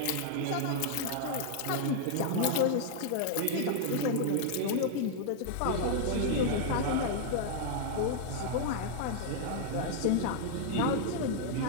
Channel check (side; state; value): both; different; correlation 0.00